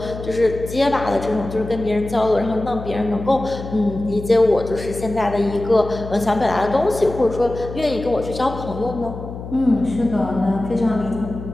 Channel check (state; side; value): noise; left; hum, 10 dB below the sound